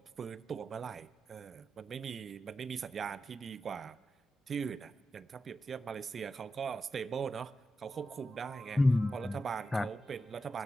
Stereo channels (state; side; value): normal; both; correlation 0.90